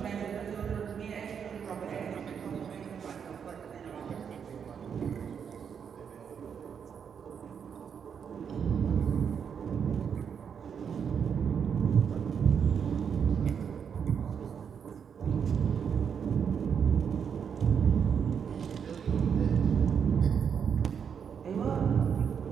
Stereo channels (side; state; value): left; quieter; 7.3 dB